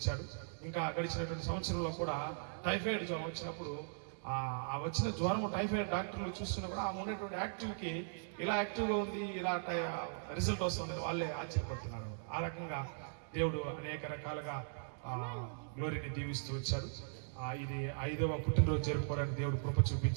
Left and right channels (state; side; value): silent; left; digital silence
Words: ఇంకా గడిచినటువంటి సంవత్సరంలో కూడా టైఫాయిడ్ జ్వరం వచ్చినప్పుడు ఆ వచ్చిన జ్వరం టైఫాయిడ్ డాక్టర్లు చూస్తున్నప్పుడు ఆమె ఉన్నటువంటి యాక్టివ్కి ఇలా యాక్టివ్గా ఉంది, ఇలా రిజల్ట్ వస్తుందని వాళ్ళే ఆశ్చర్యపడుతున్నారు. ఆ రకంగా దేవుడు అనేక రకాలుగా గ్లోరీని దీవిస్తూ వచ్చాడు. ఇది 5వ పుట్టినరోజు జరుపుకోవడానికి దేవుడు కృప